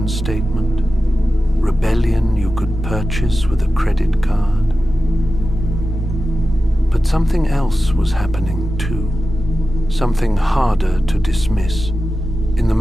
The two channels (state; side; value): normal; both; correlation 0.93